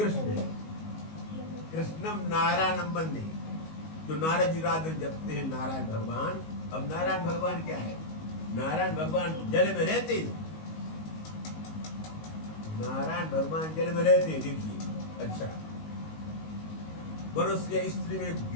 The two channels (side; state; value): right; late; 19 ms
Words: है। कृष्णम नारायणम वंदे, जो नारद जी रात में जपते हैं नारायण भगवान। अब नारायण भगवान क्या है? नारायण भगवान जल में रहते हैं, नारायण भगवान जल में रहते हैं। देखिए, अच्छा मनुष्य स्त्री में